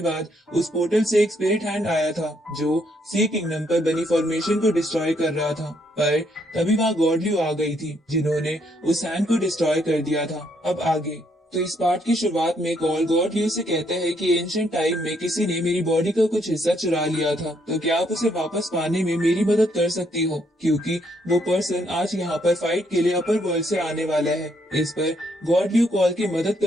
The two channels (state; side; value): normal; both; correlation 0.72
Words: बाद उस पोर्टल से एक स्पिरिट हैंड आया था जो सी किंगडम पर बनी फॉर्मेशन को डिस्ट्रॉय कर रहा था। पर तभी वहाँ गॉडल्यू आ गई थी, जिन्होंने उस हैंड को डिस्ट्रॉय कर दिया था। अब आगे तो इस पार्ट की शुरुआत में कॉल गॉडल्यू से कहता है कि एंशिएंट टाइम में किसी ने मेरी बॉडी का कुछ हिस्सा चुरा लिया था, तो क्या आप उसे वापस पाने में मेरी मदद कर सकती हो, क्योंकि वो पर्सन आज यहाँ पर फाइट के लिए अपर वर्ल्ड से आने वाला है। इस पर गॉडल्यू कॉल की मदद